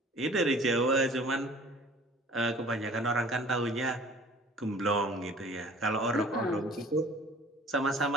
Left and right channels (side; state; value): both; normal; correlation 0.49